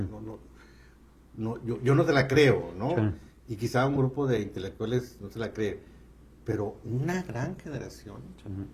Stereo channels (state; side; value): identical; both; correlation 1.00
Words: sea, yo no te la creo, ¿no? Sí. Y quizá un grupo de intelectuales no se la cree, pero una gran generación Sí.